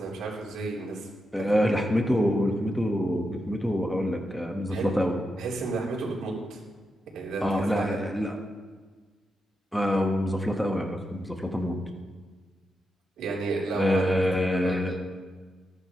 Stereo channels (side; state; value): both; normal; correlation 0.86